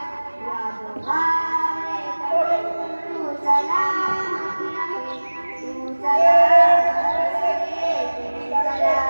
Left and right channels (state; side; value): inverted; both; correlation -1.00